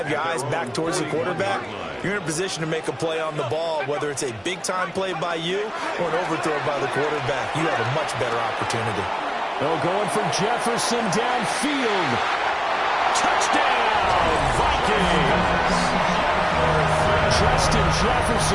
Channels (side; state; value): both; identical; correlation 1.00